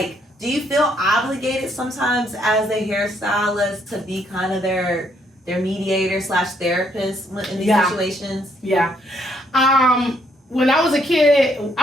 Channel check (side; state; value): both; normal; correlation 0.70